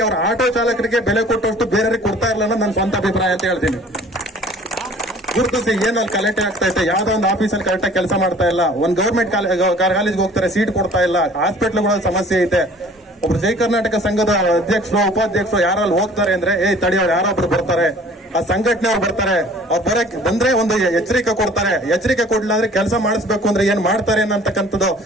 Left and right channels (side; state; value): both; normal; correlation 0.50